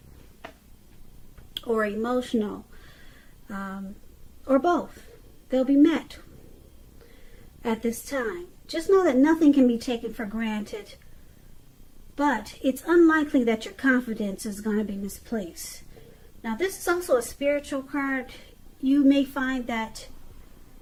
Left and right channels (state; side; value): identical; both; correlation 1.00